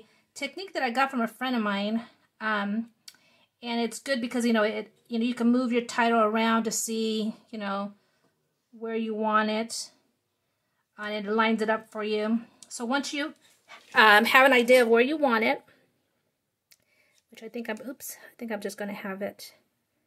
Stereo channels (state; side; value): identical; both; correlation 1.00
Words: technique that I got from a friend of mine, and it's good because you can move your title around to see where you want it, and it lines it up for you. So once you have an idea of where you want it, which I think I'm just going to have it